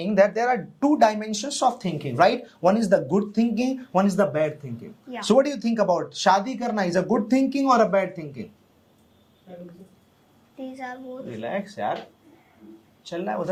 that there are two dimensions of thinking, right? One is the good thinking, one is the bad thinking. Yeah. So what do you think about shadi karna? Is a good thinking or a bad thinking? These are both. Relax, यार. चल रहा है,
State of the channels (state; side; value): identical; both; correlation 1.00